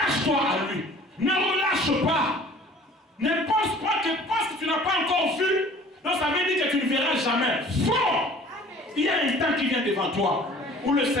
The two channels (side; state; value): both; normal; correlation 0.49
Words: à lui. Ne relâche pas. Ne pense pas que parce que tu n'as pas encore vu, donc ça veut dire que tu ne verras jamais. Faux! Il y a un temps qui vient devant toi où le